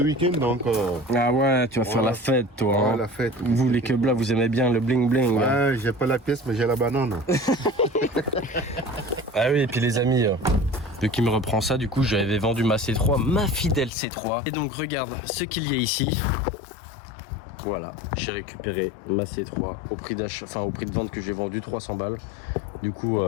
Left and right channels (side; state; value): right; drops out; at 13.9 s